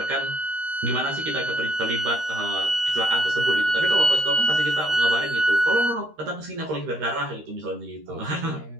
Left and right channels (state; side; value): late; left; 13 ms